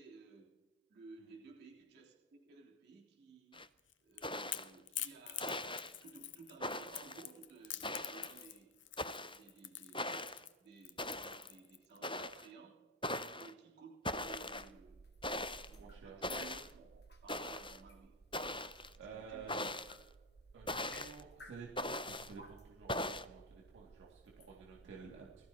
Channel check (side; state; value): both; normal; correlation 0.06